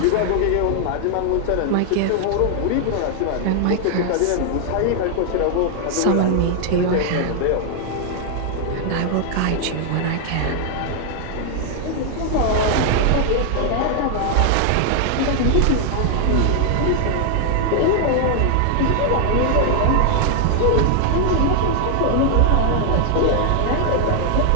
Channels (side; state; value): both; different; correlation 0.00